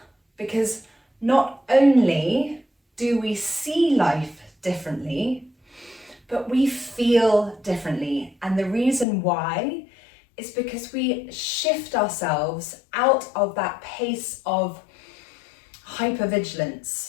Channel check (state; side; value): drops out; right; at 9.1 s